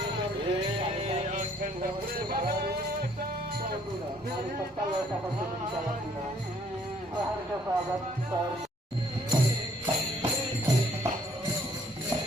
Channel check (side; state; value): both; normal; correlation 0.63